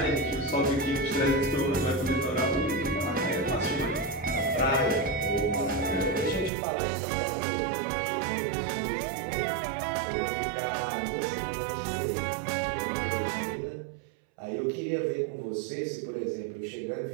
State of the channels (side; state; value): left; drops out; at 6.5 s